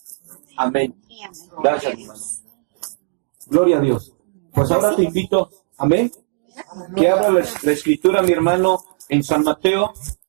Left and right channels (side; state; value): left; silent; digital silence